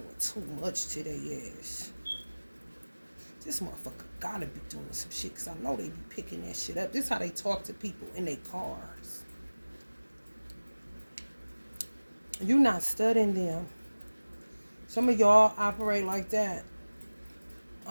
too much to their ass. This motherfucker gotta be doing some shit because I know they be picking that shit up. This is how they talk to people in their cars. You not studying them. Some of y'all operate like that.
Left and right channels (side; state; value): both; inverted; correlation -1.00